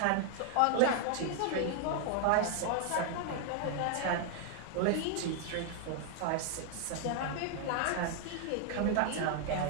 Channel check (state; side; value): different; both; correlation 0.00